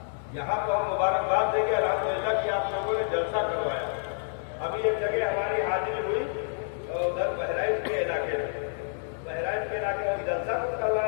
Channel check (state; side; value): silent; right; digital silence